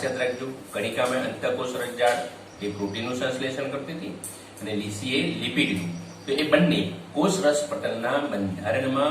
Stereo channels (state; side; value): identical; both; correlation 1.00